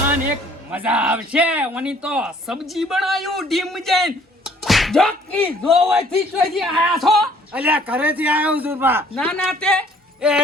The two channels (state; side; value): normal; both; correlation 0.58